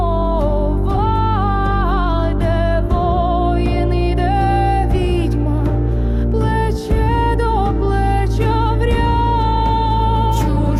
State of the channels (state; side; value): identical; both; correlation 1.00